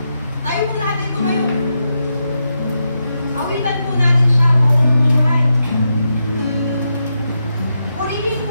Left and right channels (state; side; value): inverted; both; correlation -0.86